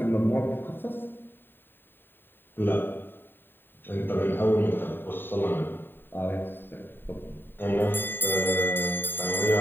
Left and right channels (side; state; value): right; late; 0.097 ms